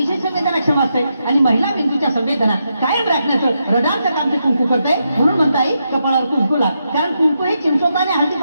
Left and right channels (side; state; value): both; inverted; correlation -0.83